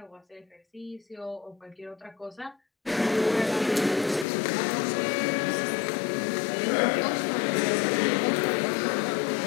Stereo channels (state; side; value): drops out; right; at 4.2 s